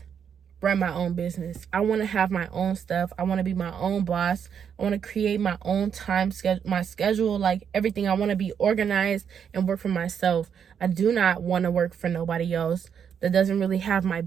run my own business. I want to have my own stuff. I want to be my own boss. I want to create my own time schedule, my schedule, like everything. I want to be organized and work for myself. I do not want to work for nobody else that doesn't really have my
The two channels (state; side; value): quieter; left; 7.7 dB